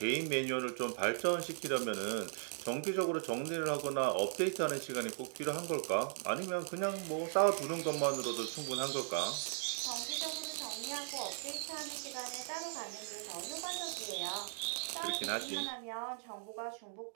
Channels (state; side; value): silent; left; digital silence